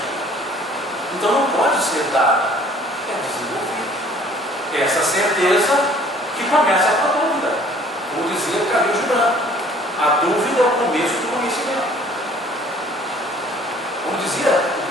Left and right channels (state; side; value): normal; both; correlation 0.55